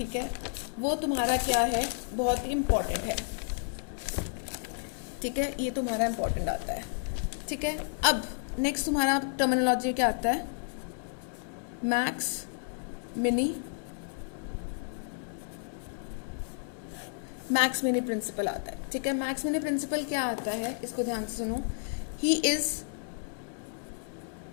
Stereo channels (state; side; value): silent; right; digital silence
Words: है, वो तुम्हारा क्या है, बहुत ही इंपॉर्टेंट है, ठीक है। ये तुम्हारा इंपॉर्टेंट आता है, ठीक है। अब नेक्स्ट तुम्हारा टर्मिनोलॉजी क्या आता है, मैक्स मिनी प्रिंसिपल आता है, ठीक है। मैक्स मिनी प्रिंसिपल क्या आता है, इसको ध्यान से सुनो। He is